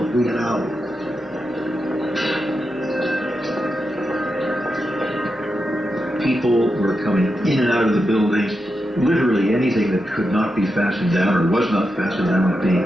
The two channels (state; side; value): normal; both; correlation 0.87